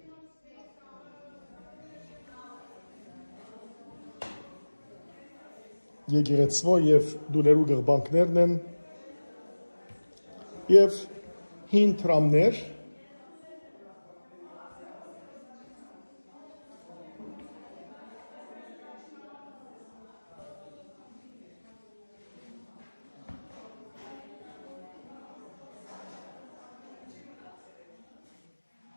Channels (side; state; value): both; inverted; correlation -1.00